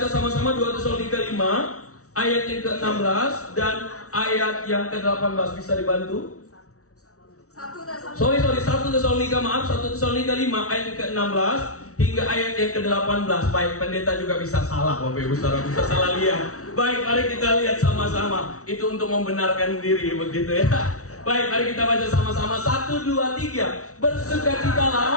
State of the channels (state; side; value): late; right; 0.65 ms